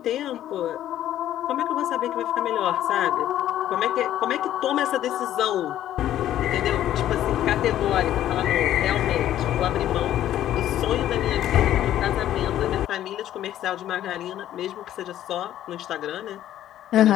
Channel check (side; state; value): right; quieter; 12.2 dB